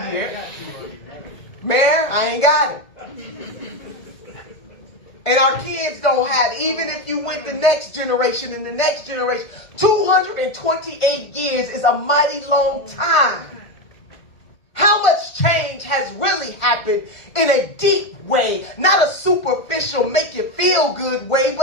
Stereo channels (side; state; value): right; late; 1.5 ms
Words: Mayor, I ain't got it. And our kids don't have it. Even if you went the next generation and the next generation, 228 years is a mighty long time. How much change has really happened in a deep way? Not a superficial, make you feel good way,